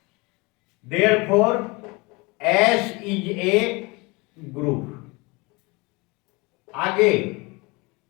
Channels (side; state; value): right; quieter; 26.1 dB